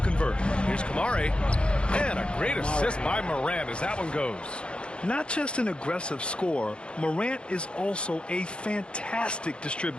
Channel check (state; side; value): late; right; 0.056 ms